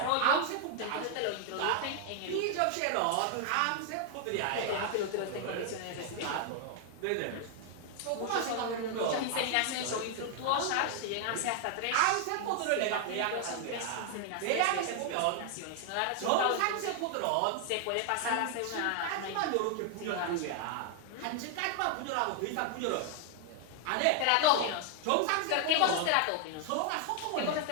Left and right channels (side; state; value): both; different; correlation 0.00